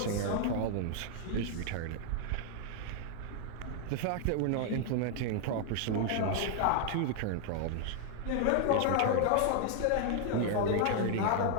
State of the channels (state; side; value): different; both; correlation 0.00